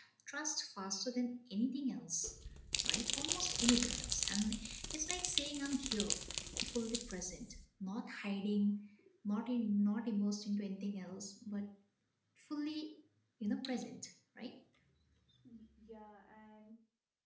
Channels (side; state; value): both; identical; correlation 1.00